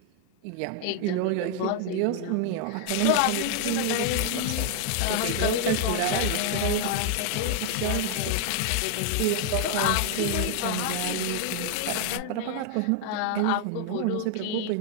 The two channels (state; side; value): different; both; correlation 0.00